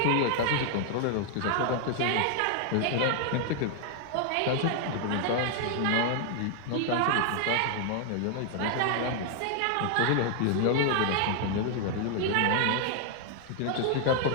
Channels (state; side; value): different; both; correlation 0.00